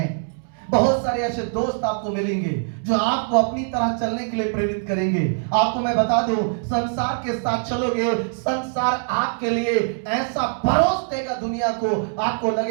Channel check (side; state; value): left; silent; 63 dB below the other